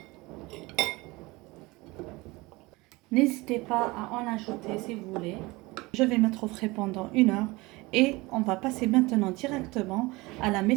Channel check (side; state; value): left; quieter; 22.6 dB